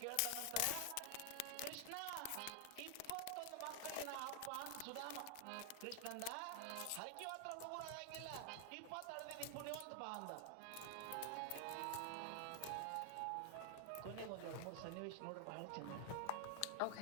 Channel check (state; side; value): different; both; correlation 0.00